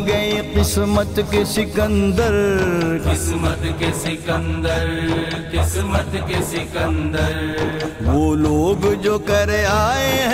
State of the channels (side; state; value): both; identical; correlation 1.00